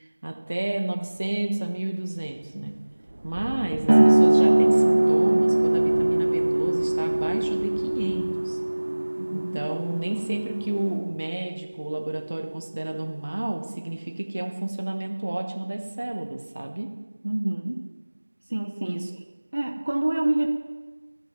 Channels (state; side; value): inverted; both; correlation -1.00